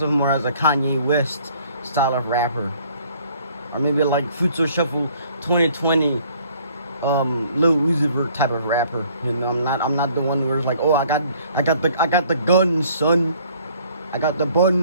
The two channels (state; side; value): inverted; both; correlation -0.59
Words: more as a Kanye West style of rapper, or maybe like Future Shuffle 2020, Lil Uzi Vert type of rapper. You know, I'm not the one where it's like, oh, I got the gun, son. I got the